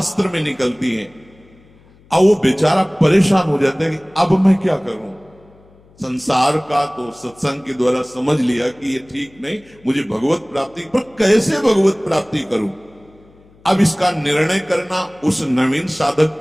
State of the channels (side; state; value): left; noise; hum, 29 dB below the sound